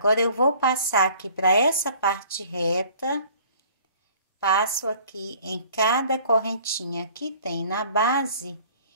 eu vou passar aqui para essa parte reta, passo aqui em cada correntinha que tem na base,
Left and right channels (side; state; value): both; inverted; correlation -0.52